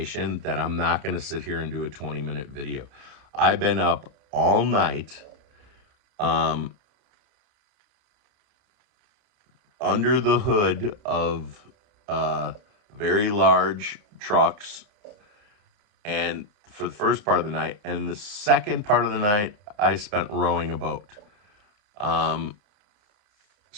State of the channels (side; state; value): left; late; 30 ms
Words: that I'm not going to sit here and do a 20-minute video. I've been up all night under the hood of very large trucks, and for the first part of the night, and the second part of the night I spent rowing a boat. And